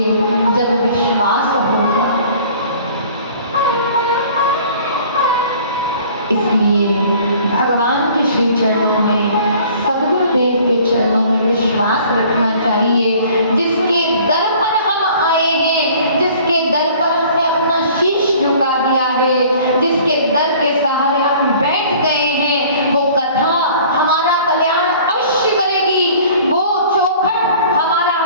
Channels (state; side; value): inverted; both; correlation -0.51